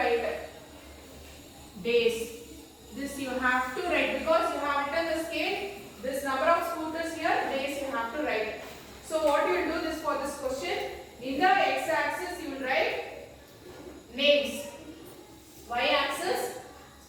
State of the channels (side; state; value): both; identical; correlation 1.00